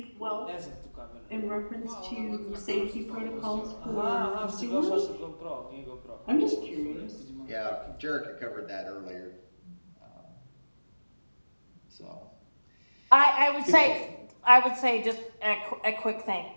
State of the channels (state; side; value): inverted; both; correlation -1.00